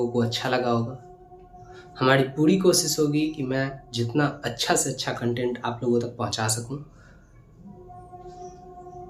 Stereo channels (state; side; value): identical; both; correlation 1.00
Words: को अच्छा लगा होगा। हमारी पूरी कोशिश होगी कि मैं जितना अच्छा से अच्छा कंटेंट आप लोगों तक पहुँचा सकूँ।